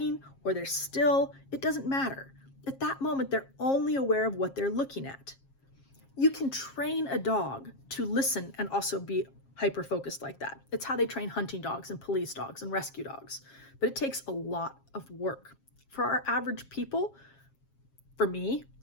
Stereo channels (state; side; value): late; right; 7.4 ms